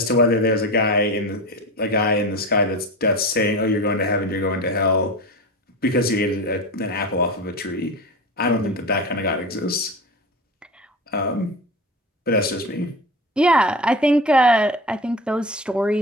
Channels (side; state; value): both; normal; correlation 0.28